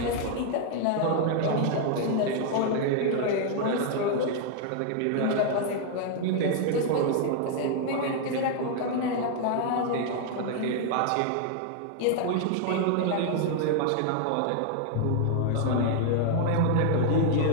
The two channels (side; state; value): both; different; correlation 0.00